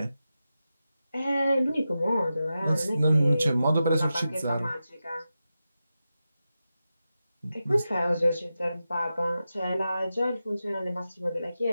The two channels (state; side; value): inverted; both; correlation -0.91